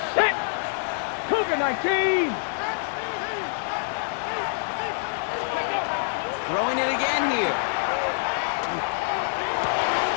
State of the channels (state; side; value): silent; right; 61 dB below the other